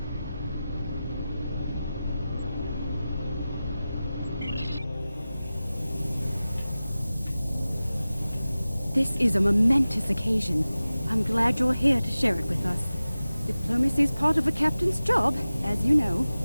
This is a momentous occasion. I'm glad you're here to share it with us. Diplomacy is part of a captain's job, as you know.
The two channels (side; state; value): both; inverted; correlation -0.96